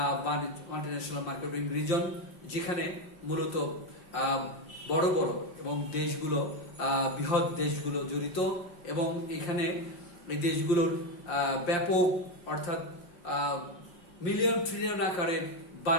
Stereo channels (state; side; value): late; right; 5.7 ms